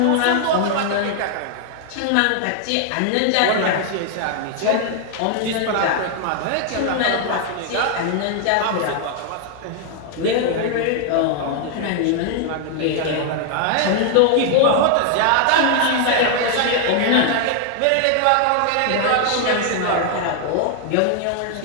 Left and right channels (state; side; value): different; both; correlation 0.00